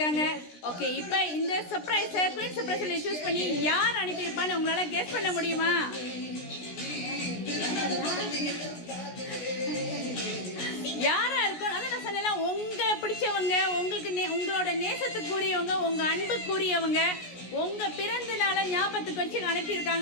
ஓகே, இப்போ இந்த சர்ப்ரைஸை குயின் சர்ப்ரைஸில் சூஸ் பண்ணி யார் அனுப்பியிருப்பான்னு உங்களால் கெஸ் பண்ண முடியுமா? யாரா இருக்கும்? அதான் நான் சொன்னேன், உங்களை பிடிச்சவங்க, உங்களுக்கு உங்களோட நேசத்துக்குரியவங்க, உங்கள் அன்புக்குரியவங்க, உங்கள் பிறந்த நாளை ஞாபகத்துக்கு வச்சு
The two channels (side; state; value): right; late; 17 ms